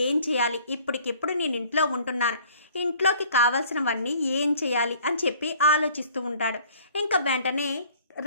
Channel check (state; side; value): inverted; both; correlation -0.54